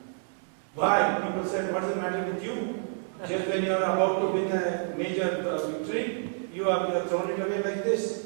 Why? People said, what's the matter with you? Just when you are about to win a major victory, you have thrown it away like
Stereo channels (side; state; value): left; silent; 59 dB below the other